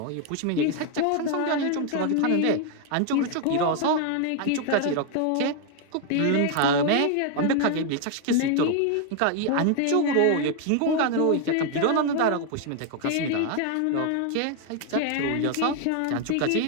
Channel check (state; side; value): different; both; correlation 0.00